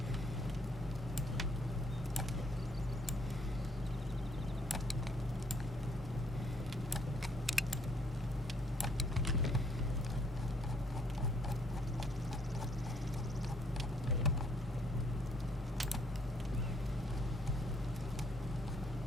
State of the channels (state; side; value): normal; both; correlation 0.67